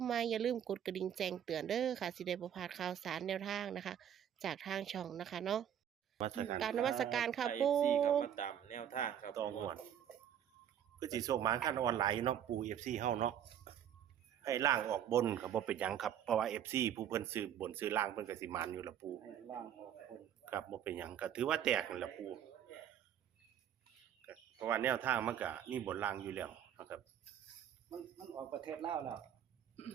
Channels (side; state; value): left; quieter; 9.7 dB